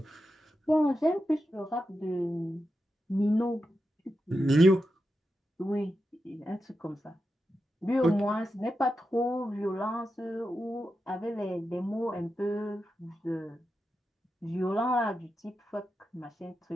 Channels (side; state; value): both; normal; correlation 0.89